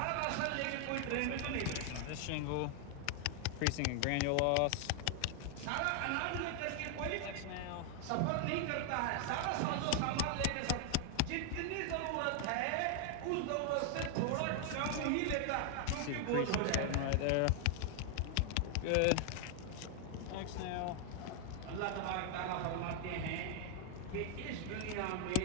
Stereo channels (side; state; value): both; different; correlation 0.00